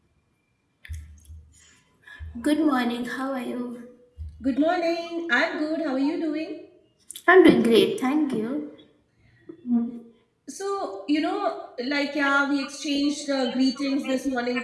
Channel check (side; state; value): both; identical; correlation 1.00